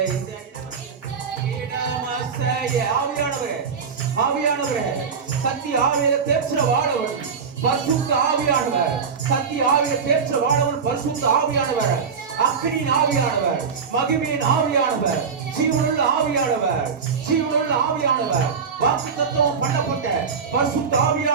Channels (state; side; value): quieter; left; 6.0 dB